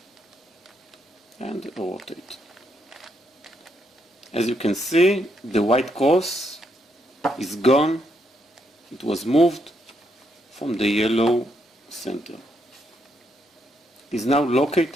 and rotate. As you can see, the white cross is gone. It was moved from the yellow center. It is now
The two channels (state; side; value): normal; both; correlation 0.77